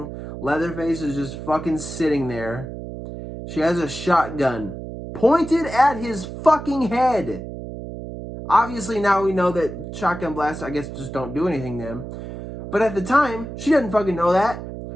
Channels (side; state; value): right; noise; hum, 9 dB below the sound